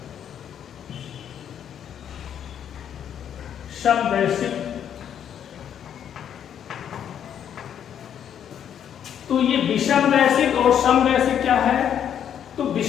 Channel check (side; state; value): right; quieter; 9.1 dB